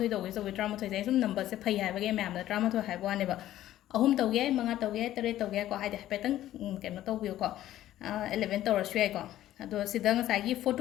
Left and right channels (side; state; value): right; quieter; 13.4 dB